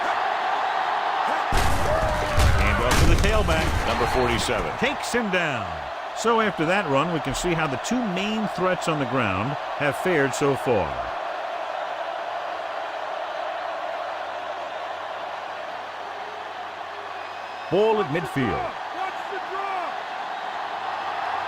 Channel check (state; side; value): identical; both; correlation 1.00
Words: Hand off to the tailback, number 47. Takes him down. So after that run, we can see how the two main threats on the ground have fared so far. Ball at midfield.